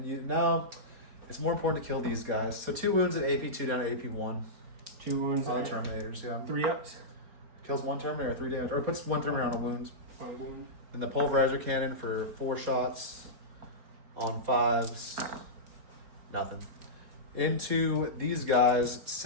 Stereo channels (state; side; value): late; left; 4.4 ms